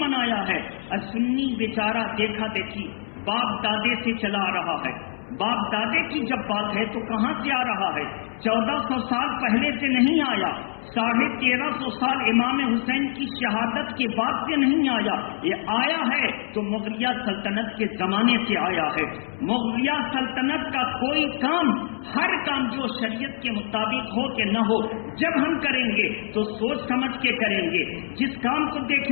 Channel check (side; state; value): right; silent; 62 dB below the other